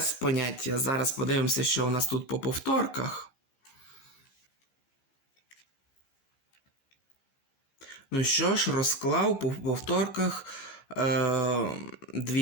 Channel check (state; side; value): late; right; 15 ms